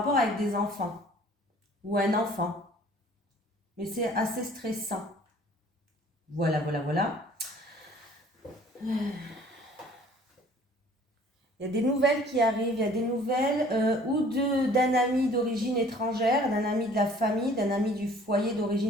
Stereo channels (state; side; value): normal; both; correlation 0.53